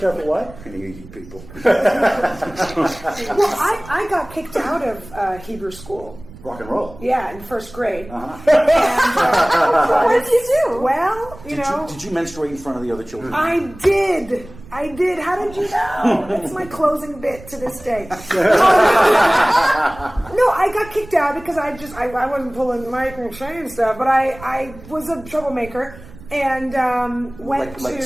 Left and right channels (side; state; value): right; noise; rumble, 19 dB below the sound